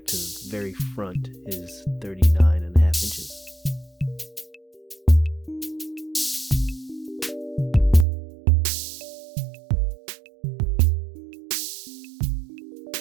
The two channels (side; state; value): left; drops out; at 8.1 s